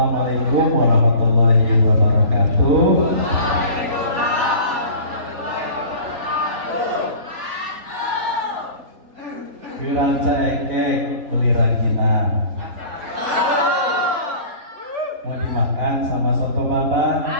warahmatullahi wabarakatuh. Kiranca eke beli ranginan. Mau dimakan sama soto baba.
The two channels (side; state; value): left; late; 3.8 ms